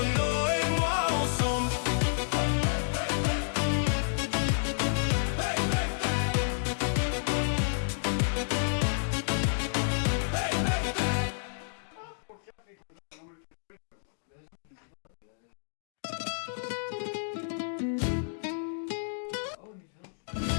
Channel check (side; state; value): right; silent; digital silence